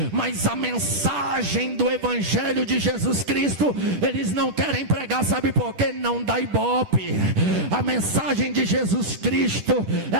mas a mensagem do Evangelho de Jesus Cristo, eles não querem pregar, sabe por quê? Não dá ibope. A mensagem de Jesus Cristo,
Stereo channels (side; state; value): left; late; 10 ms